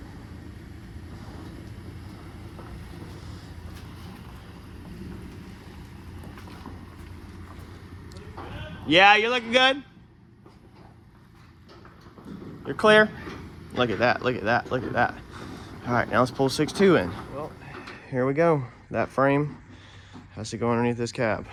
Yeah, you're looking good. You're clear. Look at that, look at that, look at that. All right, now let's pull 6.2 in. Well, here we go. That frame has to go underneath this cab.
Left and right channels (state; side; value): identical; both; correlation 1.00